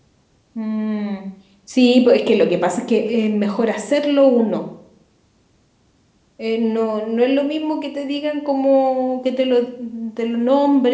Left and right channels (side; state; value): both; identical; correlation 1.00